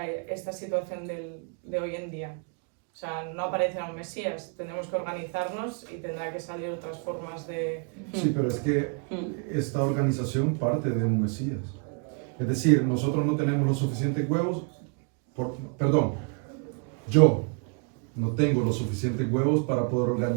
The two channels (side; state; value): left; quieter; 39.2 dB